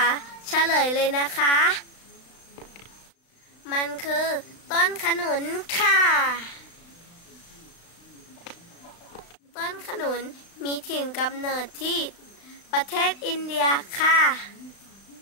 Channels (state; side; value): late; right; 35 ms